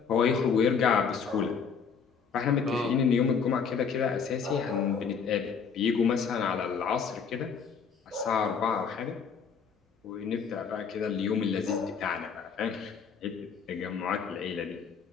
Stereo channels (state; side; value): quieter; right; 6.2 dB